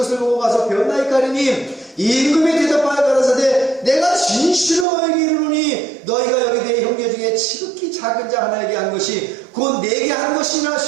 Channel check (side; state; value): left; drops out; at 4.9 s